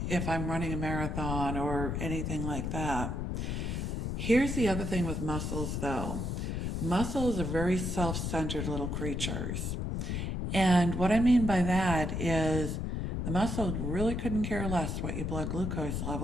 if I'm running a marathon or anything like that. Here's the other thing with muscles though. Muscles are very self-centered little creatures. And what I mean by that is the muscle really couldn't care less what your blood glucose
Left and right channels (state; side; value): noise; left; rumble, 2 dB below the sound